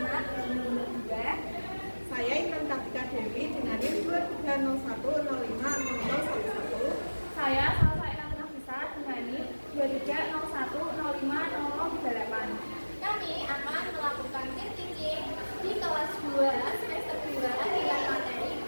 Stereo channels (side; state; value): both; inverted; correlation -1.00